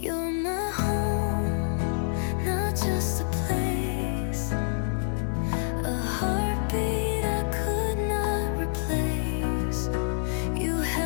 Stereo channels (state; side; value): silent; right; digital silence